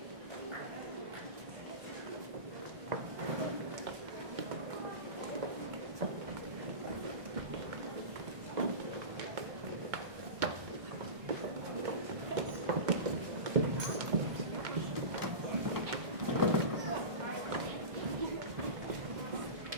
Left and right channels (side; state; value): left; late; 1.6 ms